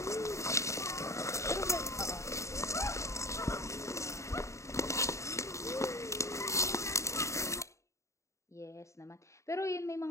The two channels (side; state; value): right; late; 0.14 ms